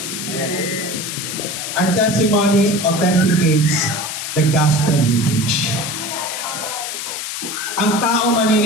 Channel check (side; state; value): left; noise; hiss, 5 dB below the sound